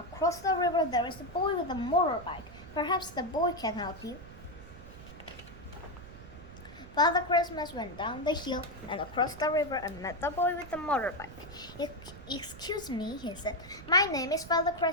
the river, there is a boy with a motorbike. Perhaps the boy can help you." Father Christmas went down the hill and across the river and met the boy with the motorbike. "Excuse me," he said. "My name is Father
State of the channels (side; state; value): right; noise; rumble, 16 dB below the sound